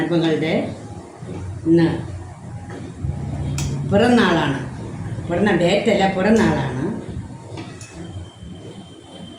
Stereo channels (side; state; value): both; identical; correlation 1.00